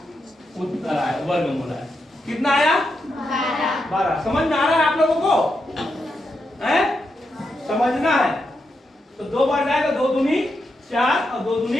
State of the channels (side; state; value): both; normal; correlation 0.84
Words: उत्तर आया, वर्गमूल आया। कितना आया? 12। समझ में आ रहा है आप लोगों को? हैं? समझना है। तो 2 बार जाएगा, 2 दूनी 4 और 2